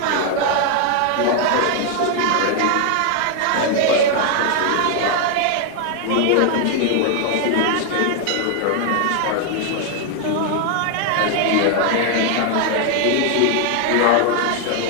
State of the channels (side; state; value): both; different; correlation 0.00